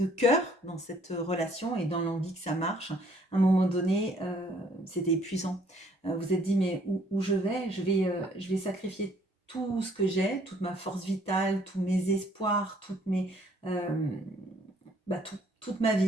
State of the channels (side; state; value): both; normal; correlation 0.62